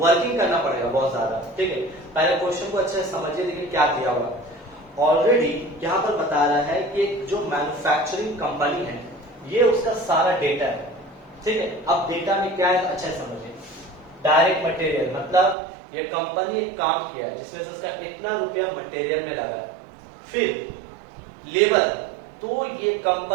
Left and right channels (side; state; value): left; drops out; at 15.6 s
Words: करना पड़ेगा बहुत ज्यादा। ठीक है, पहले क्वेश्चन को अच्छे से समझिए, देखिए क्या दिया हुआ। ऑलरेडी यहाँ पर बता रहा है कि एक जो मैन्युफैक्चरिंग कंपनी है ये उसका सारा डेटा है। ठीक है, अब डेटा में क्या है अच्छा समझिए। डायरेक्ट मटेरियल मतलब ये कंपनी एक काम किया है जिसमें से उसका इतना रुपया मटेरियल में लगा है। फिर लेबर, तो ये